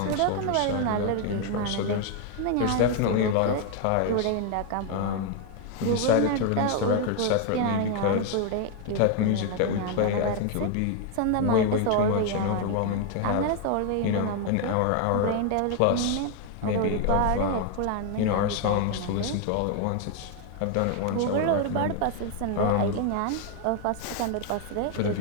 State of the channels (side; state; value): both; different; correlation 0.00